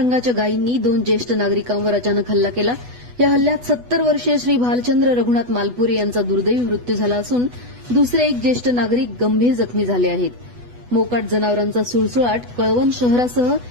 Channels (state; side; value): late; left; 8.1 ms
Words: गायींनी 2 ज्येष्ठ नागरिकांवर अचानक हल्ला केला. या हल्ल्यात 70 वर्षीय श्री भालचंद्र रघुनाथ मालपुरे यांचा दुर्दैवी मृत्यू झाला असून दुसरे एक ज्येष्ठ नागरिक गंभीर जखमी झाले आहेत. मोकाट जनावरांचा सुळसुळाट कळवण शहरासह